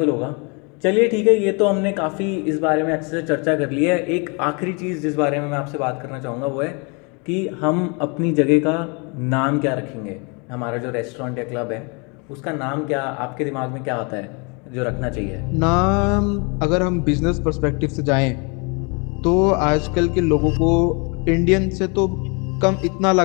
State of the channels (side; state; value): right; quieter; 32.6 dB